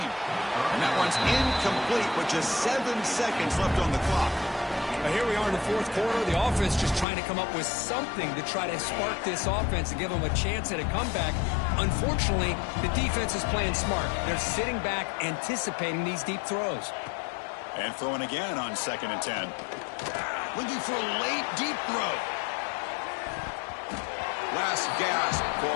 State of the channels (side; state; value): right; drops out; at 7.1 s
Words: And that one's incomplete with just 7 seconds left on the clock. Now here we are in the 4th quarter. The offense just trying to come up with something to try to spark this offense and give them a chance at a comeback. Unfortunately, the defense is playing smart. They're sitting back, anticipating these deep throws. And throwing again on 2nd and 10. Looking for a late deep throw. Last gasp